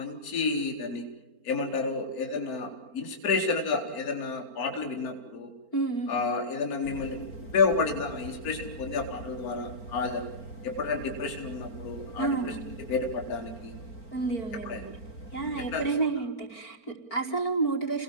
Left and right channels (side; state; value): right; late; 4.4 ms